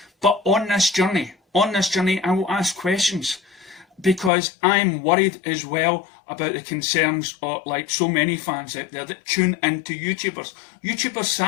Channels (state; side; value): drops out; right; at 4.3 s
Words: But on this journey, I will ask questions, because I'm worried as well about the concerns of, like so many fans out there that tune into YouTubers. YouTubers,